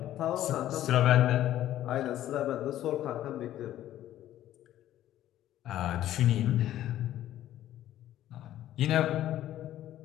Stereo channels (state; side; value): quieter; right; 12.9 dB